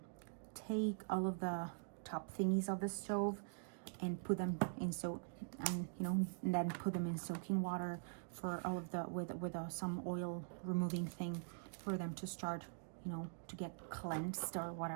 take all of the top thingies of the stove and put them in and then put them in soaking water for all of the with some oil removing thing for them to start, you know, to get cleansed or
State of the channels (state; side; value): silent; left; digital silence